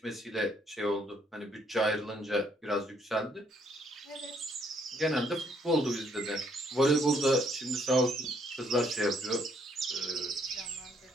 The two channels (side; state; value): both; normal; correlation 0.69